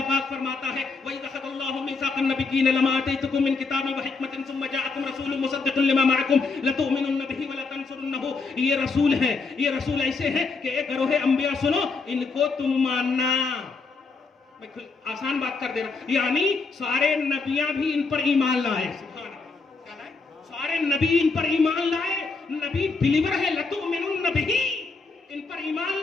पाक फरमाता है, वही अखज़ल्लाहु मीसाक़न नबिय्यीन लमा आतैतुकुम मिन किताबिन व हिकमतिन सुम्मा जाअकुम रसूलुन मुसद्दिक़ुन लिमा मअकुम लतु'मिनुन्न बिही व लतंसुरुन्नहु। ये रसूल है, ये रसूल ऐसे हैं कि एक गरोह अंबिया सुनो, इनको तुम मानना। मैं आसान बात कर दे रहा हूं, यानी सारे नबियां भी इन पर ईमान लाए। सुभान अल्लाह, क्या लाए? सारे नबी इन पर ईमान लाए। नबी बिलीवर है, लतु'मिनुन्न बिही, इन पर ईमान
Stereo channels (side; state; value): right; quieter; 4.3 dB